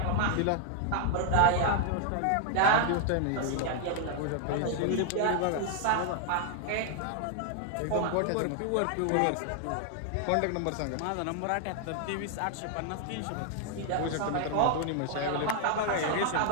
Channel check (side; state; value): both; different; correlation 0.00